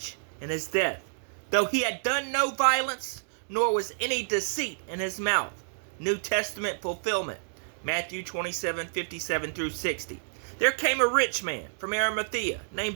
in his death, though he had done no violence, nor was any deceit in his mouth. New Testament fulfillment. Matthew 27:57-60. There came a rich man from Arimathea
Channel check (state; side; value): silent; left; digital silence